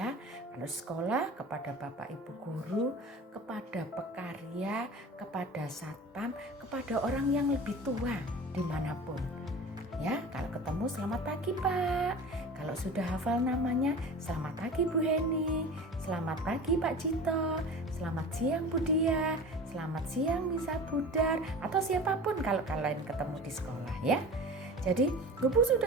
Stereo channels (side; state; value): both; normal; correlation 0.36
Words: Kalau sekolah, kepada bapak ibu guru, kepada pekarya, kepada satpam, kepada orang yang lebih tua dimanapun ya. Kalau ketemu, selamat pagi Pak. Kalau sudah hafal namanya, selamat pagi Bu Heni, selamat pagi Pak Cito, selamat siang Bu Dia, selamat siang Misa Budar, atau siapapun kalau kalian ketemu di sekolah ya. Jadi, Bu